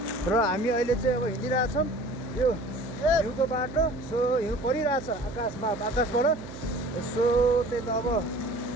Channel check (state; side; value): noise; right; hum, 13 dB below the sound